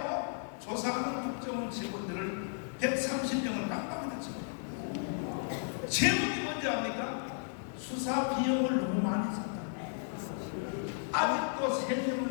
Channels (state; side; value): silent; right; digital silence